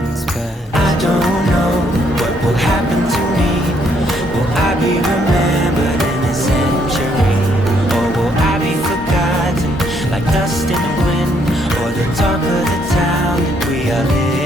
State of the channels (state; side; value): normal; both; correlation 0.70